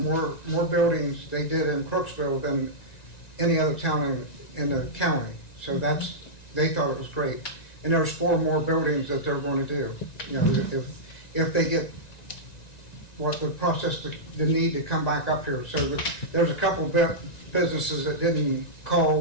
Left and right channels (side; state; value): right; late; 1.9 ms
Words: more buildings they did in Crooksville than any other town in the county. So that's they thought it was great. And there's 4 more buildings that they're going to do. You know, if they get what the process, the need to come back up here. So there's a couple businesses that didn't